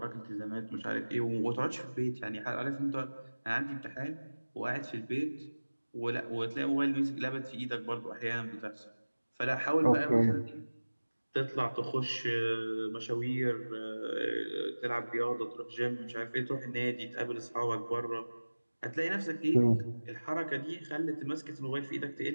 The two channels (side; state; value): both; inverted; correlation -1.00